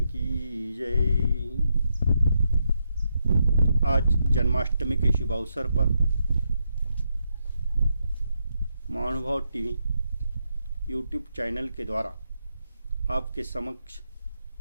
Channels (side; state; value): both; inverted; correlation -0.81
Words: की जय। आज जन्माष्टमी के शुभ अवसर पर महानुभाव टीवी यूट्यूब चैनल के द्वारा आपके समक्ष